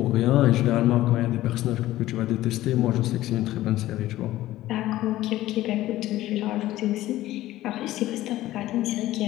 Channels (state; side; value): quieter; right; 15.4 dB